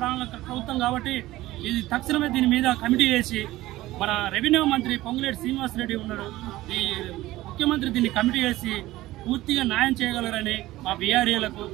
ప్రభుత్వం కాబట్టి ఇది తక్షణమే దీని మీద కమిటీ వేసి మన రెవెన్యూ మంత్రి పొంగులేటి శ్రీనివాసరెడ్డి ఉన్నారు. ఈ ముఖ్యమంత్రి దీన్ని కమిటీ వేసి పూర్తిగా న్యాయం చేయగలరని మా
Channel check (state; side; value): quieter; left; 16.9 dB